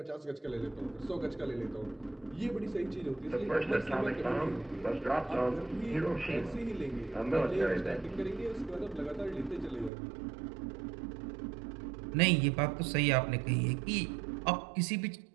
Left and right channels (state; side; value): drops out; left; at 9.9 s